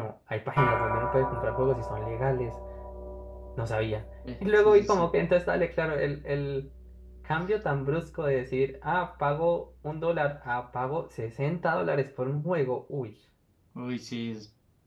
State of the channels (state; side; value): identical; both; correlation 1.00